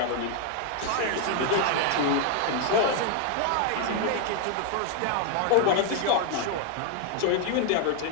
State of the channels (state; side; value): different; both; correlation 0.01